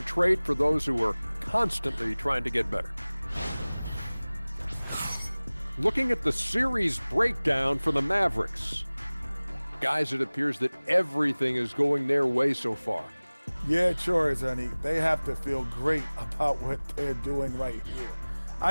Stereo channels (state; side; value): inverted; both; correlation -1.00